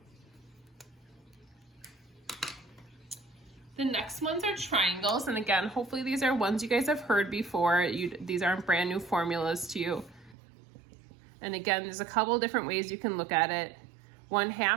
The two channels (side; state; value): left; drops out; at 10.4 s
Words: The next ones are triangles, and again, hopefully these are ones you guys have heard before. These aren't brand new formulas to you. And again, there's a couple different ways you can look at it.